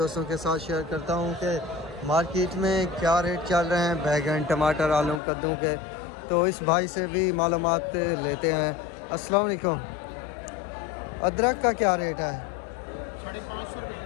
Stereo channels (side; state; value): right; drops out; at 5.2 s